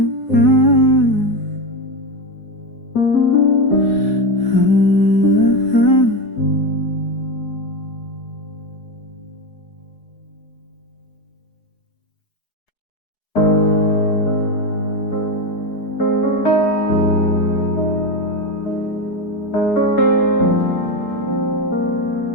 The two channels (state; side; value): late; right; 4.7 ms